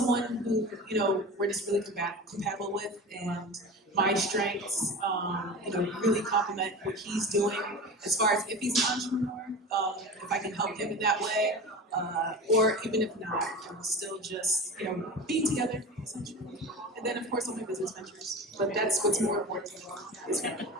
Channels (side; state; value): both; normal; correlation 0.32